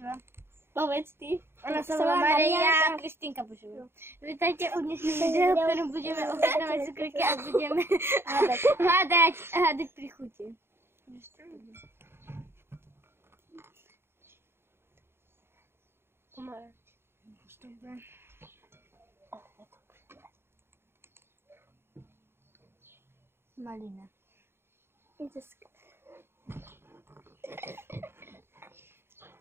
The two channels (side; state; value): left; late; 0.11 ms